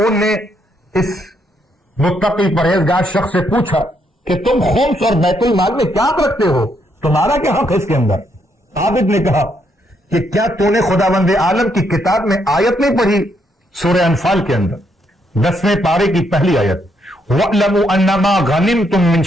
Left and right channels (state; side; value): normal; both; correlation 0.75